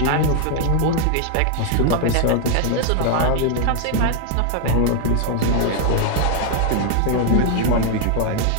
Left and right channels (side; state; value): both; different; correlation 0.00